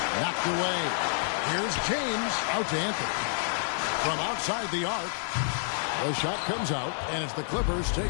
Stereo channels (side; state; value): right; silent; digital silence